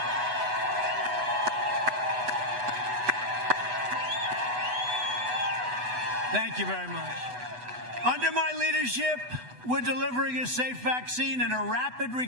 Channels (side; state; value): left; late; 8.1 ms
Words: Thank you very much. Under my leadership, we're delivering a safe vaccine and a rapid